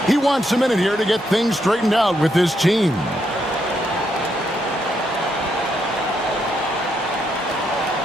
He wants a minute here to get things straightened out with his team.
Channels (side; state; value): both; normal; correlation 0.78